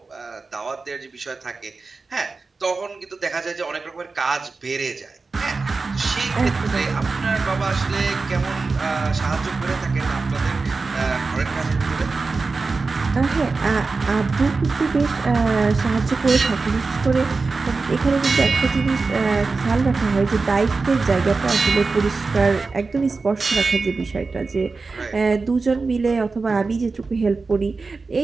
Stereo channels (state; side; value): quieter; left; 4.1 dB